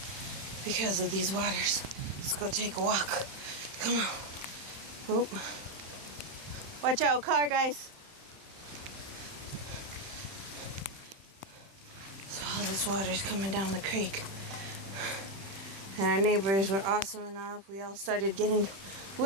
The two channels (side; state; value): left; late; 31 ms